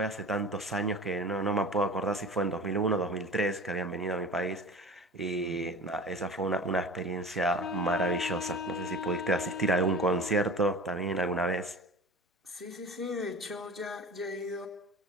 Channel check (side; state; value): both; normal; correlation 0.36